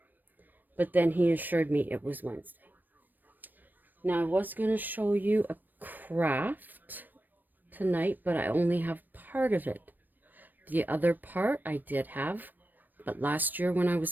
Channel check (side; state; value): left; late; 0.090 ms